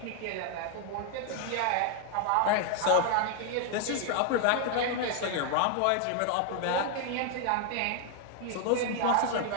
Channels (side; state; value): both; different; correlation 0.00